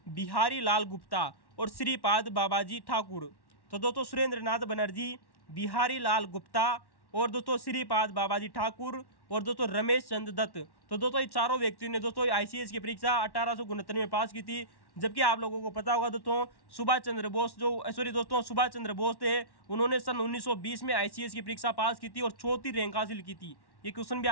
बिहारी लाल गुप्ता और श्रीपाद बाबाजी ठाकुर। तो दोस्तों सुरेंद्र नाथ बनर्जी, बिहारी लाल गुप्ता और दोस्तों श्रीपाद बाबाजी ठाकुर और दोस्तों रमेश चंद्र दत्त। तो दोस्तों ये चारों व्यक्तियों ने दोस्तों ICS की परीक्षा 1869 में पास की थी। जबकि आप लोगों को पता होगा दोस्तों सुभाष चंद्र बोस थे, उन्होंने सन 1920 में ICS की परीक्षा पास की थी और 4थी रैंक हासिल की थी। ये क्वेश्चन भी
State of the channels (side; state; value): right; late; 1.1 ms